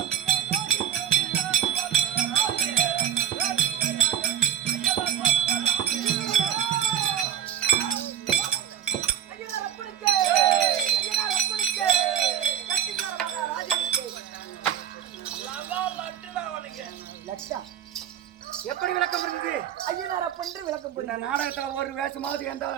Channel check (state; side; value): quieter; left; 9.7 dB